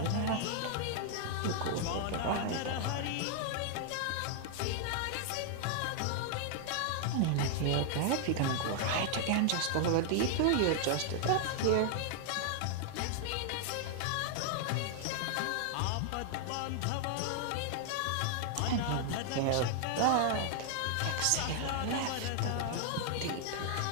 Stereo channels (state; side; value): different; both; correlation 0.00